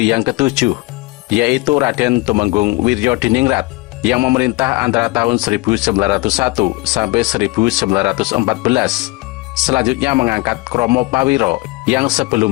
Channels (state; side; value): quieter; right; 21.8 dB